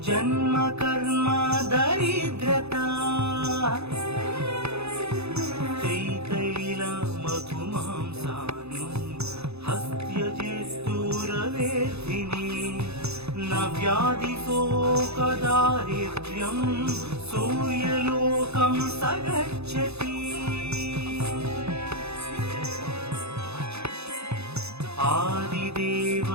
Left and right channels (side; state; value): left; late; 0.79 ms